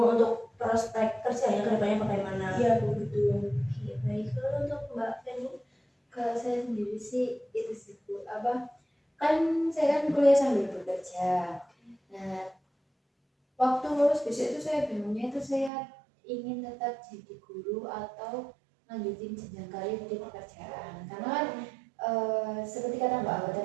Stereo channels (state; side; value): drops out; left; at 15.7 s